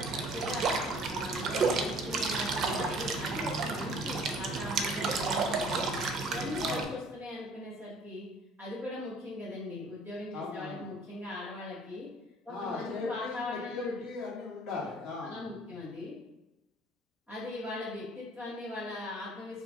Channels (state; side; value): normal; both; correlation 0.54